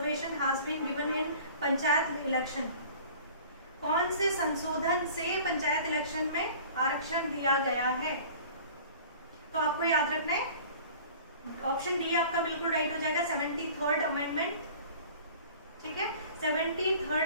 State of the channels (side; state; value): both; inverted; correlation -0.45